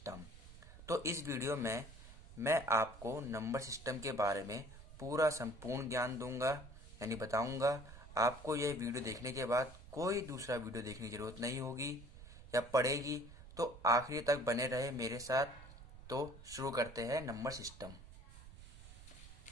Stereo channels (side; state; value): right; noise; rumble, 16 dB below the sound